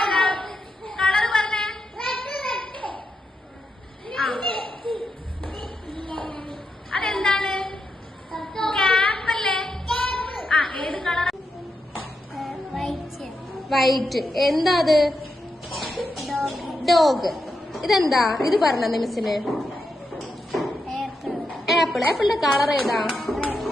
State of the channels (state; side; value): normal; both; correlation 0.85